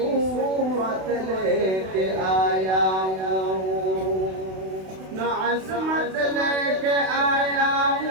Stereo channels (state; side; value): late; left; 32 ms